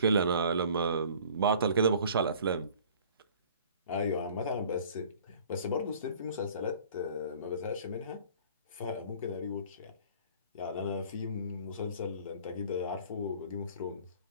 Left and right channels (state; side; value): inverted; both; correlation -0.50